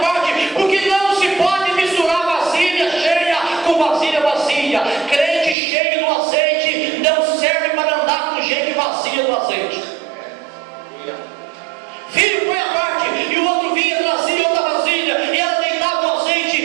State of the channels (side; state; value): left; drops out; at 5.6 s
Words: porque não se pode misturar vasilha cheia com vasilha vazia. Crente cheio do azeite não serve para andar com gente vazia do azeite. Filho, põe a parte, e o outro vinha, trazia outra vasilha, e ela deitava o azeite,